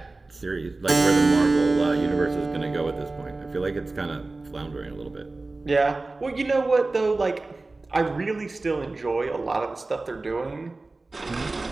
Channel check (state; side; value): quieter; left; 3.3 dB